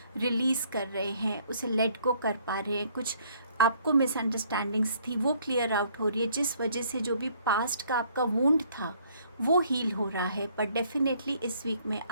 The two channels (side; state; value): both; inverted; correlation -0.63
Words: रिलीज़ कर रहे हैं, उसे लेट गो कर पा रहे हैं। कुछ आपको मिसअंडरस्टैंडिंग्स थी वो क्लियर आउट हो रही है, जिस वजह से जो भी पास्ट का आपका वुंड था वो हील हो रहा है। पर डेफिनेटली इस वीक में